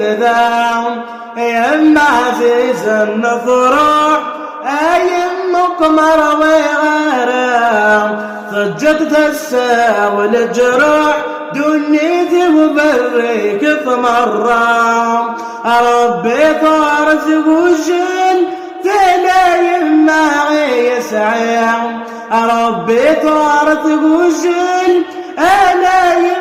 يا عزيز النفرح أيم قمر وغرام ضجت تساوي الجروح دنيتي وبريك ثمرام ربي طارت وجل تلايم معي يسعيم ربي طارت وجل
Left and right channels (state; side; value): identical; both; correlation 1.00